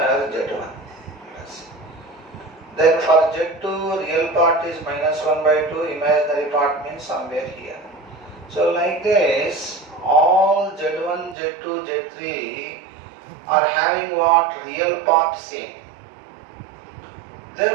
Yes. Then for Z2, real part is minus 1 by 2. Imaginary part means somewhere here. So like this, all Z1, Z2, Z3 are having what? Real part same.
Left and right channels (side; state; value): left; drops out; at 11.4 s